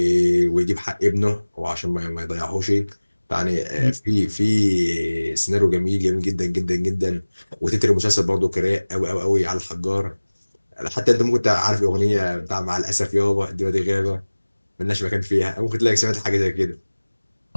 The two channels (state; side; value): inverted; both; correlation -1.00